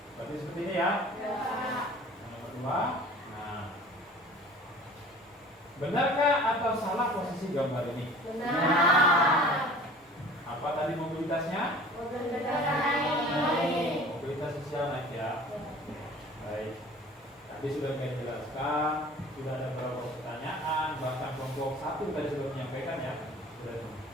Berarti seperti ini ya. Yang nomor 2. Nah, Benarkah atau salah posisi gambar ini? Benar. Apa tadi mobilitasnya? Mobilitas sosial naik ya. Baik. Tadi sudah saya jelaskan, sudah ada beberapa pertanyaan, bahkan kelompok 1 tadi sudah menyampaikan ya. Sudah.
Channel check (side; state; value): both; normal; correlation 0.45